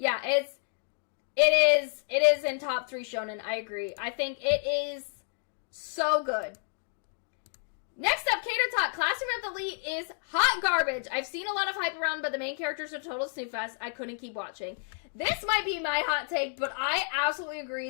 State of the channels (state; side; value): silent; right; digital silence